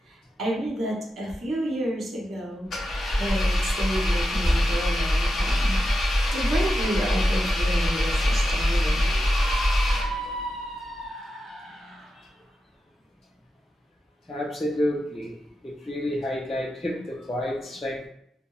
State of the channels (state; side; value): normal; both; correlation 0.89